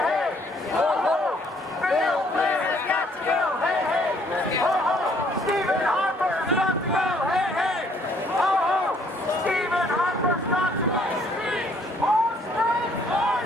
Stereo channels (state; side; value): normal; both; correlation 0.64